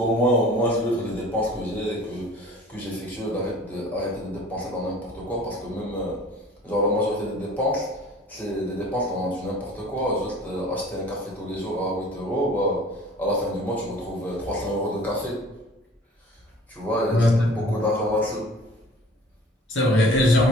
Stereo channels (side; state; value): both; normal; correlation 0.47